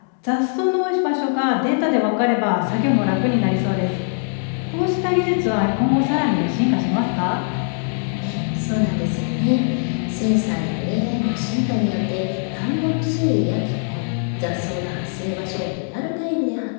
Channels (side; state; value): right; silent; 65 dB below the other